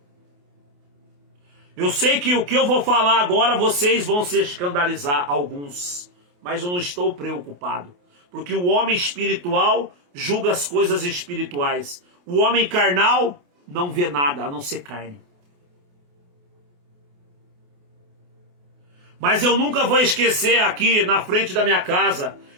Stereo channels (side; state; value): left; late; 28 ms